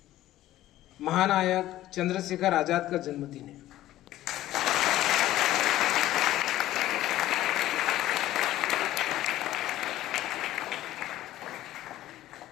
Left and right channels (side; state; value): right; quieter; 14.5 dB